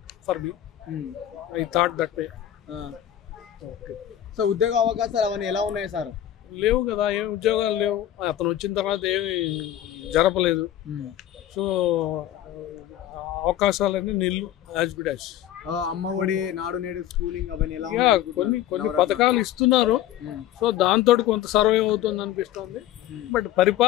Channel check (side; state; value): right; quieter; 12.2 dB